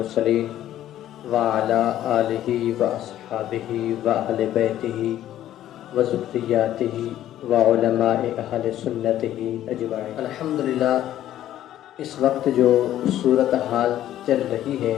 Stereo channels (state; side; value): quieter; right; 12.5 dB